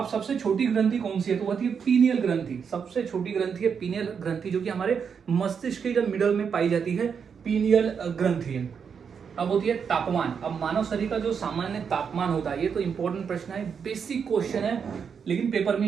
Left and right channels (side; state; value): left; quieter; 6.6 dB